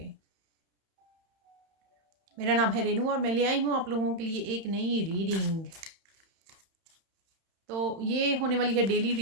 मेरा नाम है रेनू और मैं ले आई हूँ आप लोगों के लिए एक नई रीडिंग। तो ये होने वाली है डेली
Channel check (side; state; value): left; late; 31 ms